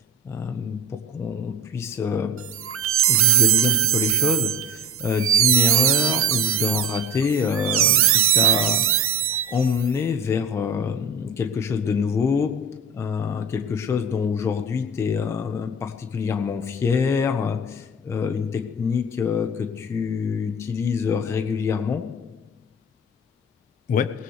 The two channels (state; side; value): normal; both; correlation 0.31